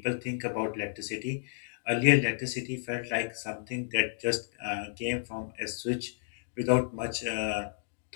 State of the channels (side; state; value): right; silent; digital silence